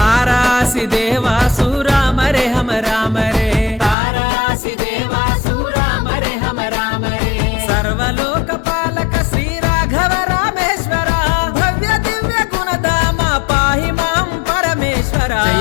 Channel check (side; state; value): right; drops out; at 4.0 s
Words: देवासु राम रे हम राम रे तारासी देवासु राम रे हम राम रे सर्वलोक पालक श्री राघव रामेश्वर भव्य दिव्य गुणधाम पाहि मां परमेश्वर